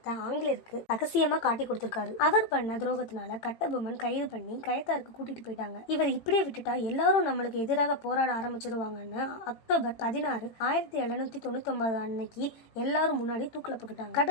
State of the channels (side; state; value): right; late; 18 ms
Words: ஆங்கிலேயருக்கு ரகசியமா காட்டி கொடுத்திருக்காரு. அவர் பண்ண துரோகத்தினால கட்டபொம்மன் கைது பண்ணி கயத்தாருக்கு கூட்டிட்டு போயிட்டாங்க. இவர் இப்படியே விட்டுட்டா எல்லாரும் நம்மளுக்கு எதிராக போராட ஆரம்பிச்சிருவாங்கன்னு அக்டோபர் 16, 1799 அன்னைக்கு எல்லாரும் முன்னாடி தூக்கில போட்டுட்டாங்க.